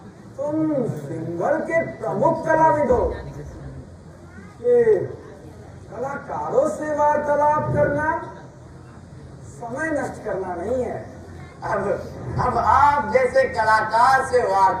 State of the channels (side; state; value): both; identical; correlation 1.00